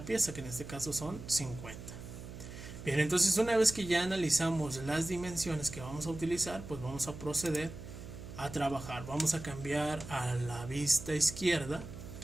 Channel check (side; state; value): right; noise; hum, 12 dB below the sound